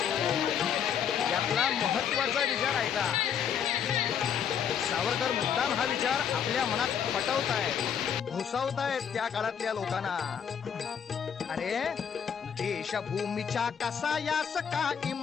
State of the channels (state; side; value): quieter; right; 8.0 dB